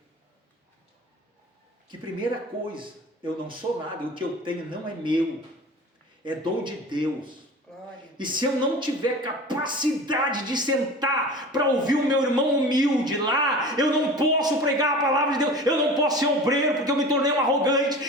que, primeira coisa, eu não sou nada, o que eu tenho não é meu, é dom de Deus. E se eu não tiver capacidade de sentar para ouvir o meu irmão humilde lá, eu não posso pregar a palavra de Deus, eu não posso ser obreiro, porque eu me tornei um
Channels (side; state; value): both; normal; correlation 0.37